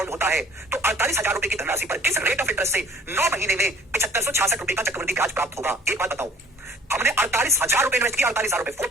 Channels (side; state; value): both; normal; correlation 0.53